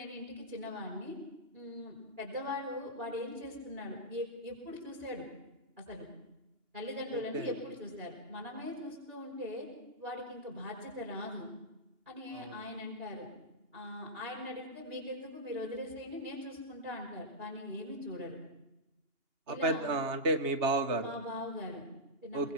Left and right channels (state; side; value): late; left; 2.8 ms